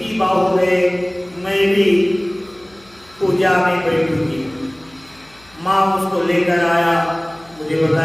बात हो गए, मैं भी पूजा में बैठूंगी। माँ उसको लेकर आया, मुझे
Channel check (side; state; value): left; noise; hum, 29 dB below the sound